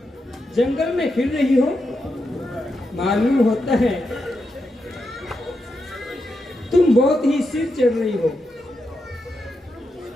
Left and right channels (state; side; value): normal; both; correlation 0.85